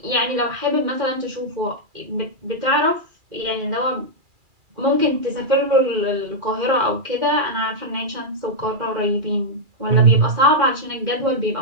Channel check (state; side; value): late; left; 2.4 ms